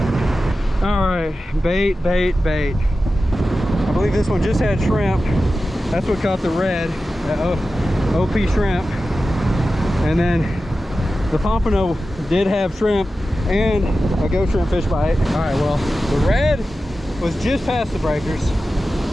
All right, bait. I believe this one just had shrimp. That's what caught the red, OP shrimp. And then the pompano did have shrimp and a ghost shrimp fish bite. All right, well, the red was just past the breakers.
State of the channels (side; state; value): both; normal; correlation 0.93